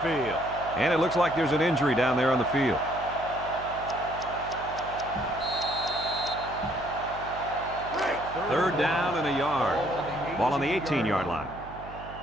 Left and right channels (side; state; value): right; noise; hum, 15 dB below the sound